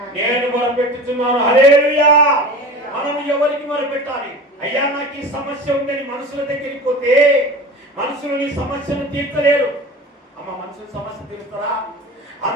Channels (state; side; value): normal; both; correlation 0.34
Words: మొరపెట్టుచున్నాను. హల్లెలూయా. మనం ఎవరికి మొరపెట్టాలి? అయ్యా, నాకు ఈ సమస్య ఉందని మనుషుల దగ్గరికి పోతే మనుషులు నీ సమస్యను తీర్చలేరు. అమ్మ, మనుషుల సమస్య తీరుస్తారా?